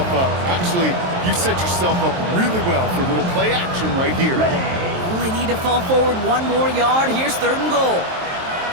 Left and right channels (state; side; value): late; left; 23 ms